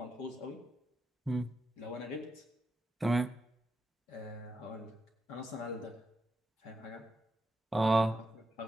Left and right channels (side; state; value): both; normal; correlation 0.85